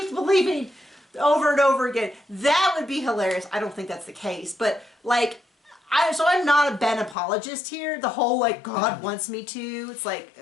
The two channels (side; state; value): right; drops out; at 7.2 s